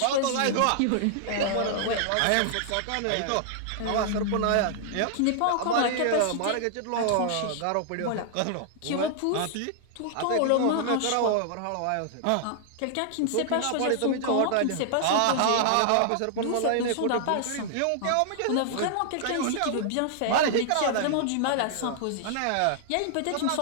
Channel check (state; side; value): different; both; correlation -0.01